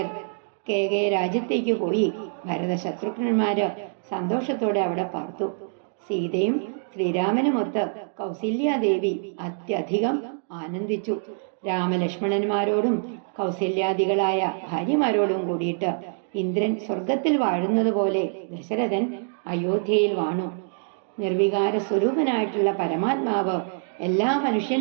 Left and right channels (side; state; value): left; silent; digital silence